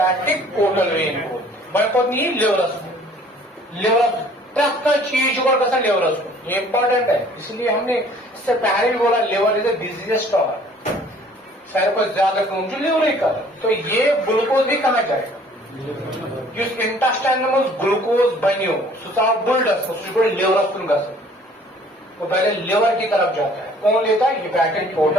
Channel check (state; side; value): normal; both; correlation 0.55